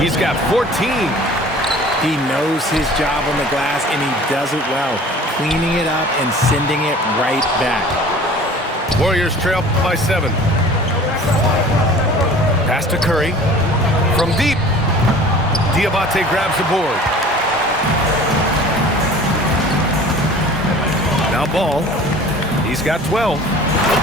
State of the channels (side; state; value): both; normal; correlation 0.45